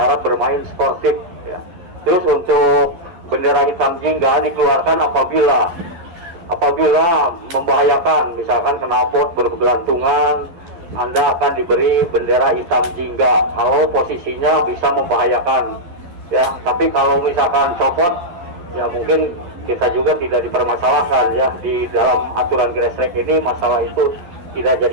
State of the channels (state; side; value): late; left; 11 ms